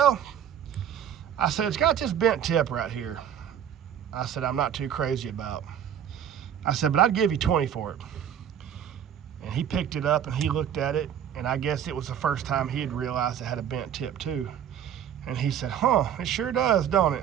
it's got this bent tip right here. I said, I'm not too crazy about. I said, but I'd give you 20 for it. And he picked it up and he looked at it, and I guess it was the first time he had realized it had a bent tip too. And he said, huh, it sure does, don't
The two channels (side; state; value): left; quieter; 9.4 dB